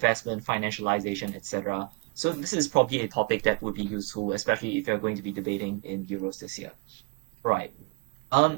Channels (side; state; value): left; quieter; 27.4 dB